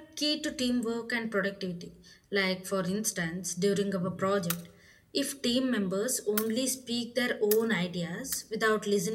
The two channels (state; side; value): identical; both; correlation 1.00